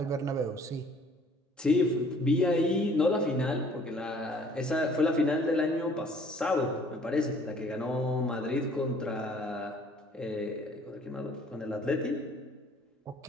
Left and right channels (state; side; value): normal; both; correlation 0.56